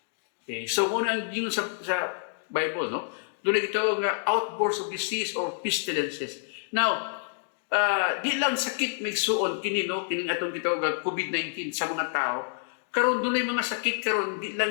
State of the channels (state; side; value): silent; right; digital silence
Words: Okay, so muna ang gingon sa Bible no dunay gitawag nga outbursts of disease or pestilences. Now di lang sakit migsuon kini no kining atong gitawag COVID-19 sa mga tao. Karon dunay mga sakit karon di